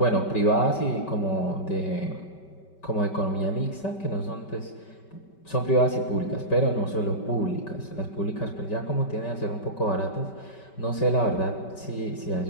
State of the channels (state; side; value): late; right; 5.2 ms